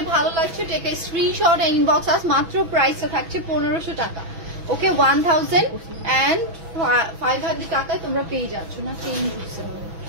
ভালো লাগছে take a screenshot inbox us. মাত্র প্রাইসটা থাকছে 1500 টাকা। ওকে, 1500 টাকায় তোমরা পেয়ে যাচ্ছ না, চেঞ্জ হচ্ছে।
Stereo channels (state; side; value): late; left; 6.1 ms